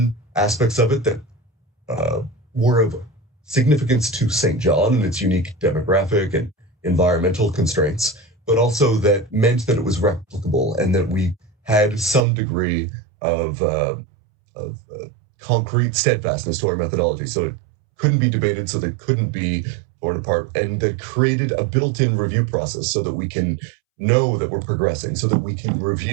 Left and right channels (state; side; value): drops out; left; at 12.2 s